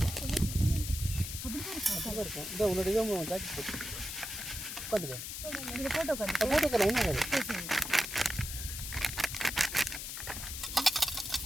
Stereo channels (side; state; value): left; noise; hiss, 6 dB below the sound